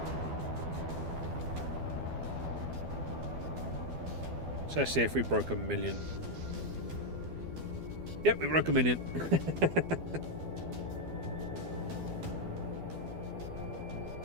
So let's see if we broke 1 million. Yep, we broke 1 million.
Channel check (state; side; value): late; left; 12 ms